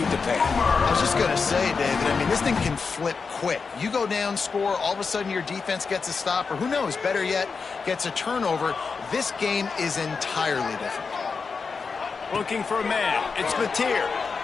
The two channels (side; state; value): right; quieter; 5.0 dB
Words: to panic. I was just going to say, David, I mean, this thing can flip quick. You go down, score, all of a sudden your defense gets a stop, or who knows, better yet, gets a turnover. This game is entirely different. Looking for a man. It's Mateer.